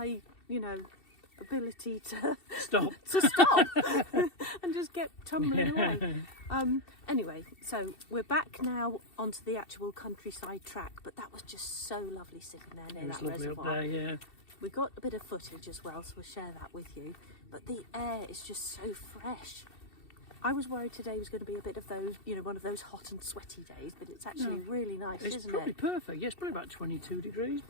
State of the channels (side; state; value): right; late; 2.7 ms